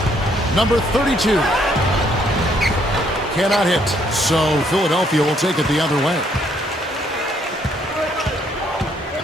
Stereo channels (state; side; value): normal; both; correlation 0.69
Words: Number 32. Cannot hit, so Philadelphia will take it the other way.